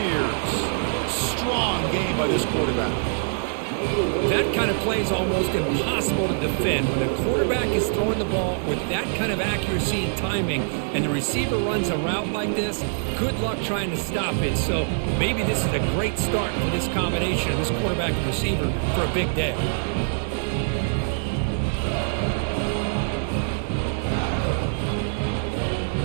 Strong game by this quarterback. That kind of play is almost impossible to defend. When a quarterback is throwing the ball with that kind of accuracy and timing, and the receiver runs a route like this, good luck trying to stop it. So maybe this is a great start for this combination of this quarterback and receiver for a big day.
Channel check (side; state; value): left; silent; digital silence